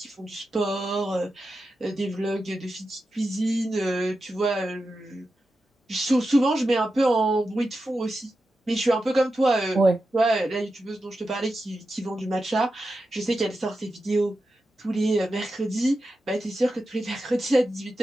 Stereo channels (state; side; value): normal; both; correlation 0.90